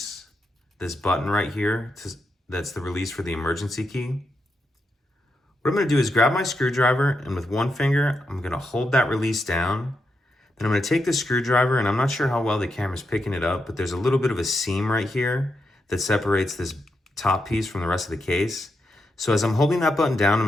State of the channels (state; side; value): normal; both; correlation 0.84